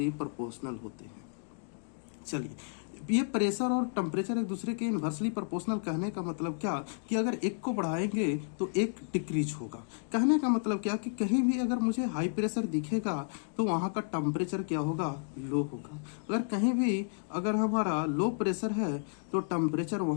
प्रोपोर्शनल होते हैं। चलिए, ये प्रेशर और टेम्परेचर एक दूसरे के इन्वर्सली प्रोपोर्शनल कहने का मतलब क्या कि अगर एक को बढ़ाएंगे तो एक डिक्रीज होगा। कहने का मतलब क्या कि कहीं भी अगर मुझे हाई प्रेशर दिखेगा तो वहाँ का टेम्परेचर क्या होगा, लो होगा। अगर कहीं भी अगर हमारा लो प्रेशर है तो टेम्परेचर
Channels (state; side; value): silent; right; digital silence